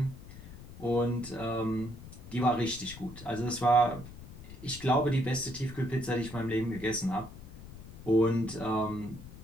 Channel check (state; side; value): noise; left; rumble, 15 dB below the sound